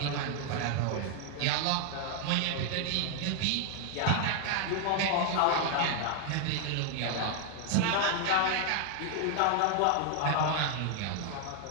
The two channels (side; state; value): both; different; correlation 0.00